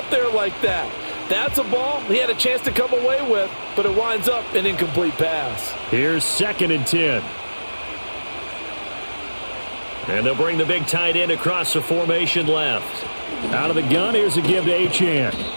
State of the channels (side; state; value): both; inverted; correlation -1.00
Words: there like that. That's a ball he had a chance to come away with, but it winds up an incomplete pass. Here's 2nd and 10. And they'll bring the big tight end across the formation left. Out of the gun, here's a give to Achane.